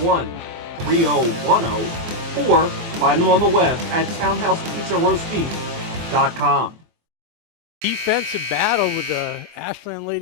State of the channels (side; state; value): left; late; 24 ms